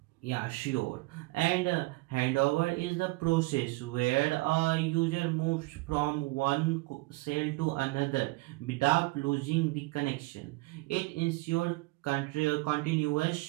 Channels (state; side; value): quieter; left; 22.9 dB